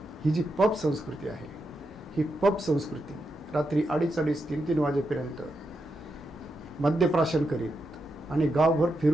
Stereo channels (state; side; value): normal; both; correlation 0.85